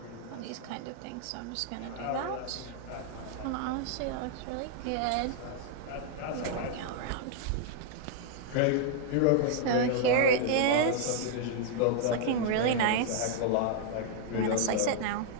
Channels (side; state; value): both; different; correlation -0.01